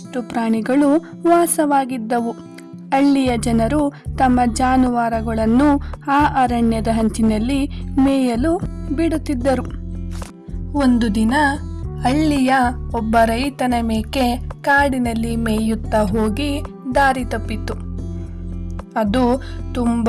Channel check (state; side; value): identical; both; correlation 1.00